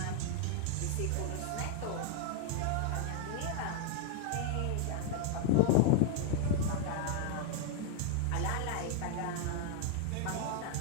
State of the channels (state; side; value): different; both; correlation 0.00